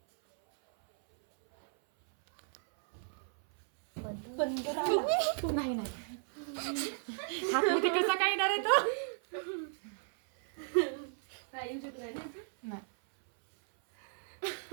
नाही नाही कसा काय येणार आहे तो नाही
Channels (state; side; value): silent; left; 55 dB below the other